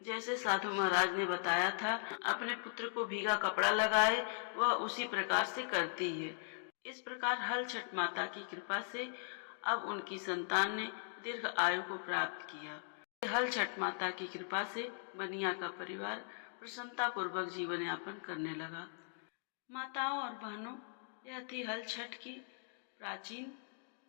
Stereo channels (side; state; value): right; silent; digital silence